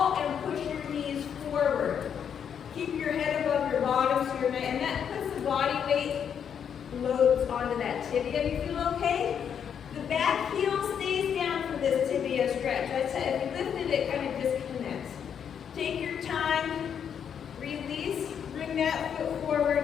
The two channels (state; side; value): quieter; right; 8.0 dB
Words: and push your knees forward. Keep your head above your bottom, so and that puts the body weight loads onto that tibia. You feel okay? The back heel stays down for this tibia stretch. I said, if you lifted it, kind of disconnects. Take your time, release, bring that foot